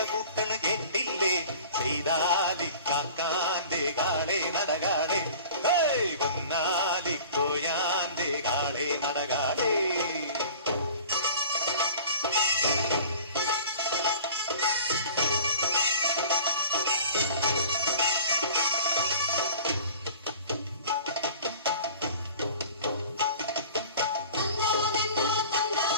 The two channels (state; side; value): inverted; both; correlation -0.44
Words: കൂട്ടണ കേട്ടില്ലേ, ചെയ്താലിക്കാക്കാന്റെ കാളെ നടകാളെ, പൊന്നാലിക്കോയാന്റെ കാളെ നടകാളെ.